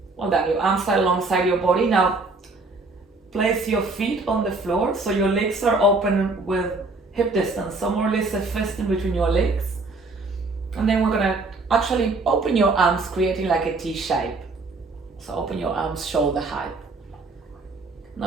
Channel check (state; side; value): quieter; left; 3.5 dB